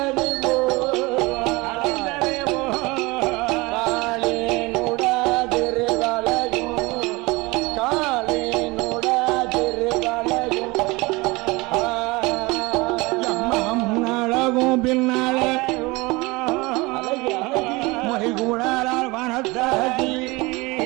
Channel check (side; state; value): left; quieter; 23.7 dB